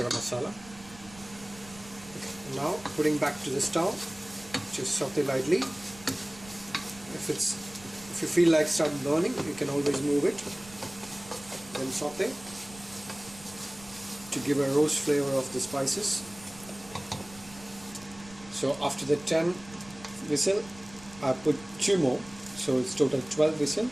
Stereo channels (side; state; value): right; noise; rumble, 20 dB below the sound